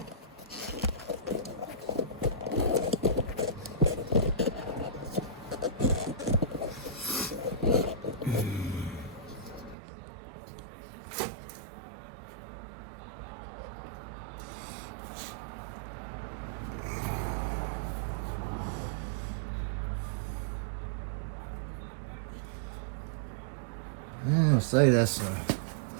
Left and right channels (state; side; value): drops out; left; at 9.8 s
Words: I'm gonna say that's